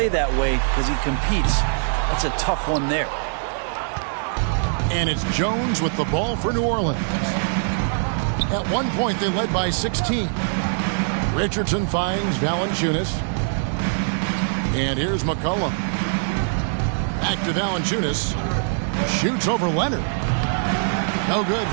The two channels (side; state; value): left; silent; digital silence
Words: that way because he competes. That's a tough one there. And it's Jones with the ball for New Orleans. At one point, they led by 16. Richardson finds Valanciunas. And here's McCollum. Back to Valanciunas. Shoots over Leonard. No good